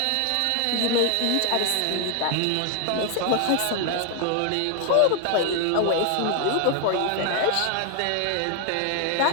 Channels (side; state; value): both; different; correlation 0.00